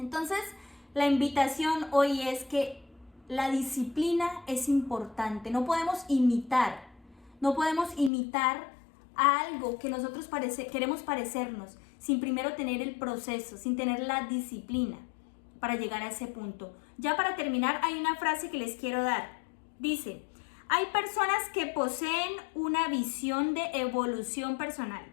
la invitación hoy es que la disciplina es importante. No podemos imitar a algo que nosotros queremos parecernos sin primero tener el proceso, sin tener la disciplina para llegar a ese punto. Ya para terminar, hay una frase que les quiero dar. Dice: hay personas que poseen una visión de evolución personal,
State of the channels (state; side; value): drops out; right; at 8.1 s